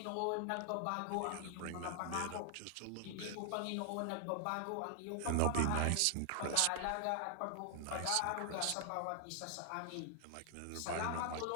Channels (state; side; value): different; both; correlation 0.00